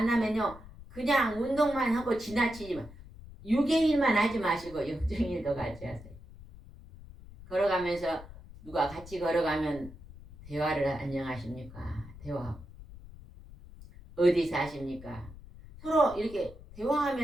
그냥 운동만 하고 지나치지만 6의 일만 하지 마시고 영적인 일도 같이 하세요. 걸어가면서 누가 같이 걸어가면 대화를 안녕하십니까? 대화하고 어디 사십니까? 서로 이렇게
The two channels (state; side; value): noise; left; rumble, 17 dB below the sound